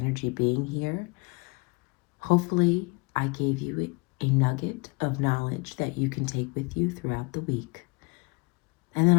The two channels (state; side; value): quieter; right; 28.7 dB